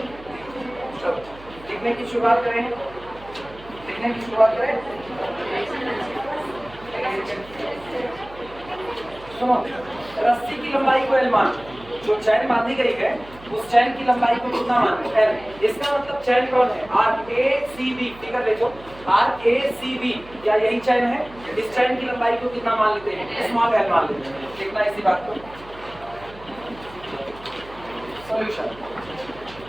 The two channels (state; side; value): noise; right; hum, 20 dB below the sound